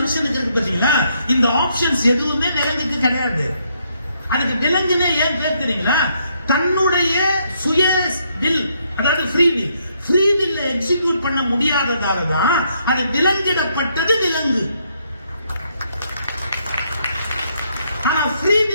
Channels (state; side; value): inverted; both; correlation -0.73